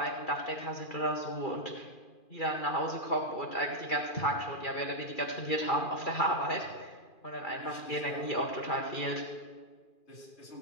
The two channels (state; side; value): late; right; 2.4 ms